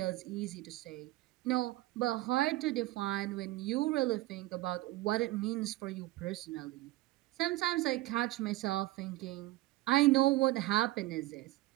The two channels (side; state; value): left; quieter; 17.9 dB